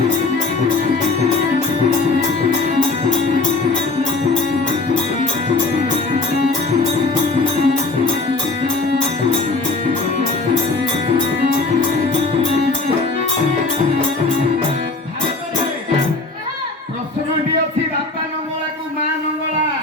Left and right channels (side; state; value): right; quieter; 3.5 dB